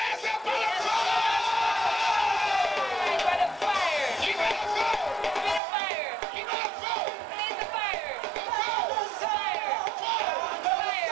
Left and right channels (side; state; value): left; drops out; at 5.6 s